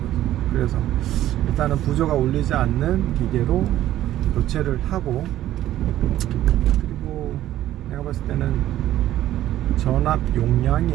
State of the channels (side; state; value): left; quieter; 13.3 dB